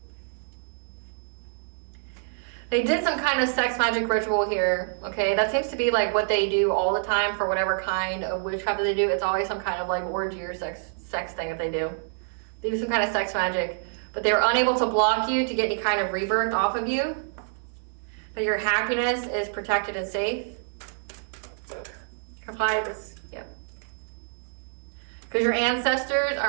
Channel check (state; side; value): silent; left; digital silence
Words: They did some kind of sex magic ritual here, okay? That seems to be like what they do all the time for whatever kind of witchcraft that they do. It's always some kind of like orgy or sex thing that they do. They do some kind of sex magic, but they were unable to block you to get any kind of rebirth off of you. That your happiness is protected and safe. Apply this, yep. Because your ancestors